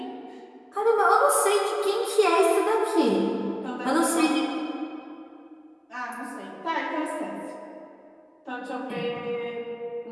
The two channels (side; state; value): both; identical; correlation 1.00